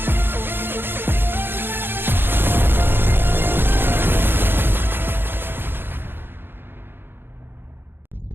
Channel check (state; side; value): late; left; 0.10 ms